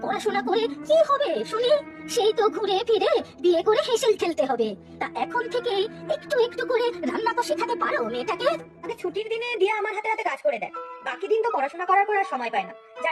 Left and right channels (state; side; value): identical; both; correlation 1.00